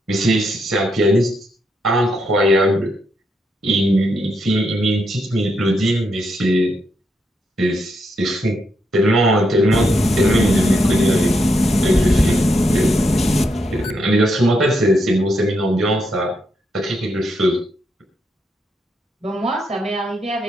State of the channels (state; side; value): normal; both; correlation 0.80